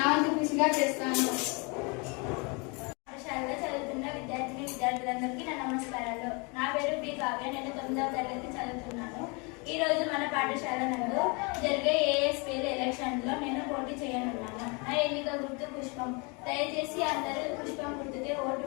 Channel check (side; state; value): right; quieter; 30.9 dB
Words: వంతు కృషిగా చేస్తాను. పాఠశాలలో చదువుతున్న విద్యార్థులందరికీ నా నమస్కారాలు. నా పేరు బి కావ్య. నేను 9వ తరగతి చదువుతున్నాను. ఈ రోజు మన పాఠశాల నందు జరిగే ఏఎస్పీఎల్ ఎలక్షన్లో నేను పోటీ చేయనున్నాను. నా ఎన్నిక గుర్తు పుష్పం. దయచేసి అందరూ పుష్పం గుర్తుకే ఓటు